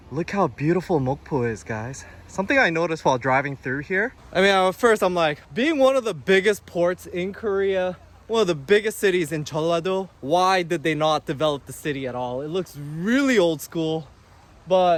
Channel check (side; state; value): both; identical; correlation 1.00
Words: Look how beautiful Mokpo is, guys. Something I noticed while driving through here. I mean, at first I'm like, being one of the biggest ports in Korea, one of the biggest cities in Jeollado, why did they not develop the city at all? It looks really old school,